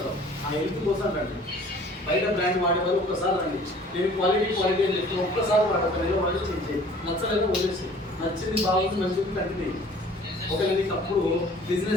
ఆ హెల్త్ కోసం రండి. బయట బ్రాండ్ వాడేవాళ్ళు ఒక్కసారి రండి. నేను క్వాలిటీ అని చెప్పి ఒక్కసారి వాడతాను. వాడి చేంజ్ నచ్చలేదు వదిలేసి, నచ్చింది బాగుంది మంచిది కంటిన్యూ. ఒకవేళ నీకు అప్పుడు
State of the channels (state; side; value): normal; both; correlation 0.50